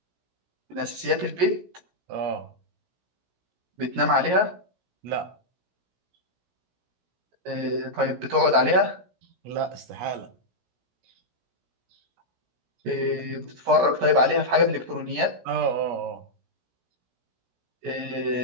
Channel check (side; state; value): left; late; 17 ms